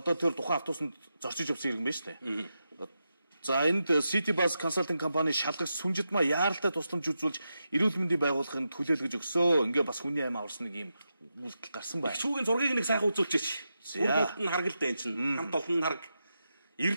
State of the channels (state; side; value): inverted; both; correlation -0.88